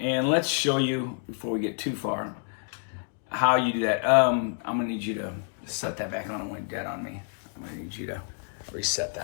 let's show you, before we get too far, how you do that. I'm gonna need you to set that back on. It went dead on me. I'm gonna need you to reset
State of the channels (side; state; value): right; silent; digital silence